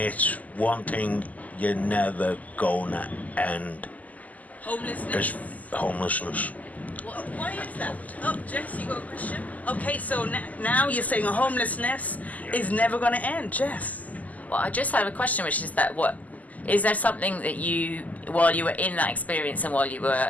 one thing you're never gonna end. Homelessness. Why is that? Oh, Jess, you got a question? Okay, so now you're saying homelessness is never going to end, Jess. Well, I just have a question, which is that is there something that you, while you were in that experience and while you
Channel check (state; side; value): late; right; 0.077 ms